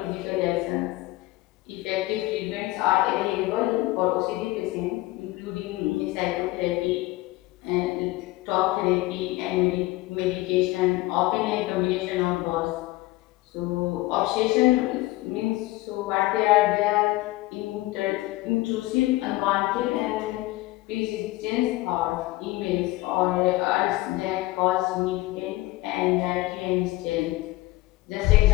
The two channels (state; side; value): quieter; right; 19.1 dB